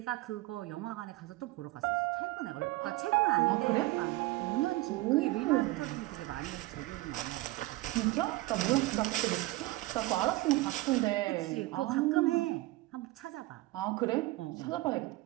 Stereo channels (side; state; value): left; quieter; 19.5 dB